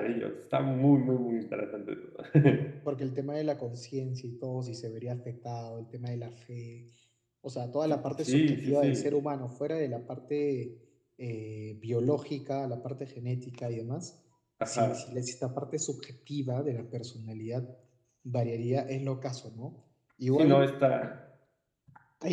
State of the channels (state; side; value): identical; both; correlation 1.00